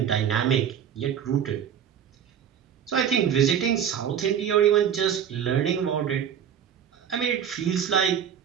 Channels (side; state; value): left; quieter; 8.7 dB